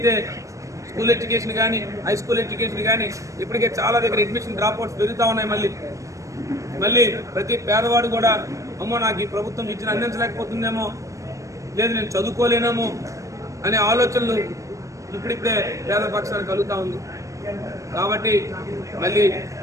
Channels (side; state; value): left; late; 0.15 ms